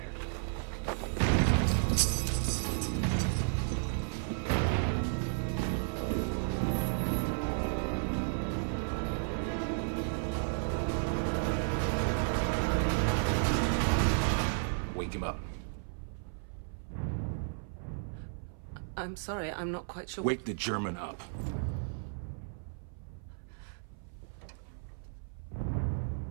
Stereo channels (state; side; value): silent; left; 55 dB below the other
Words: Wake him up. I'm sorry, I'm not quite sure. Wake the German up.